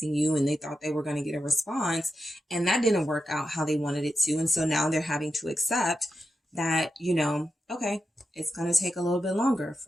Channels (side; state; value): both; normal; correlation 0.88